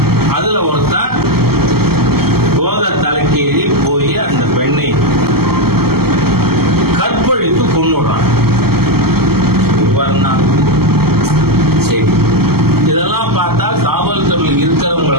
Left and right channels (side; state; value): left; late; 0.95 ms